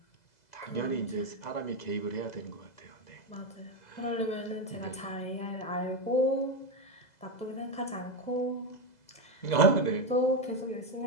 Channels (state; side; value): late; right; 2.0 ms